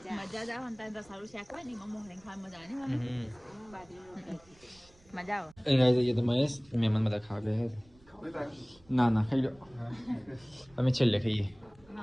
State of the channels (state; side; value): noise; right; rumble, 28 dB below the sound